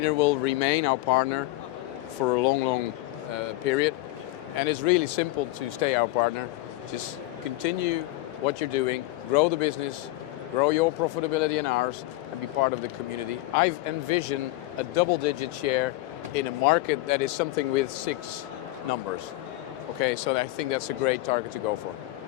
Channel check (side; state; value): right; quieter; 18.2 dB